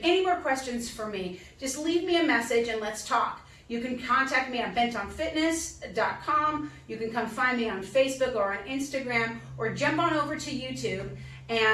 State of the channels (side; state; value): both; identical; correlation 1.00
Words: any more questions for me, just leave me a message and let's talk. You can contact me at bentonfitness.com. You can come find me on Facebook or on Instagram, or jump on over to YouTube